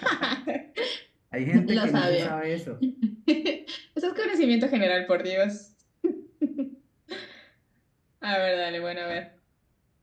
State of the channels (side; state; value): both; identical; correlation 1.00